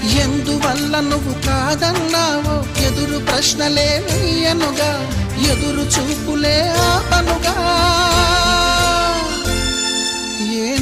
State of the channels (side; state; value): both; identical; correlation 1.00